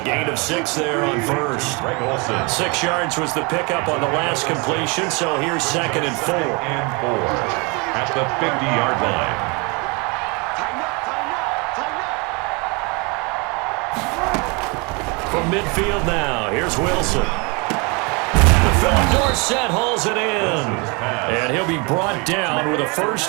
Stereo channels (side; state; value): left; quieter; 29.3 dB